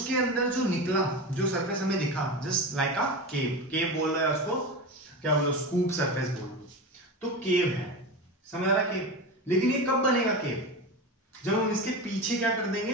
अंदर जो निकला, जो सरफेस हमें दिखा, जस्ट लाइक अ केव। केव बोल रहा है उसको, क्या बोलो? स्कूप सरफेस बोल लो, तो केव है, समझ आ रहा? केव। लेकिन ये कब बनेगा केव? जब हम इसके पीछे क्या कर देंगे?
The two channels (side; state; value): both; normal; correlation 0.24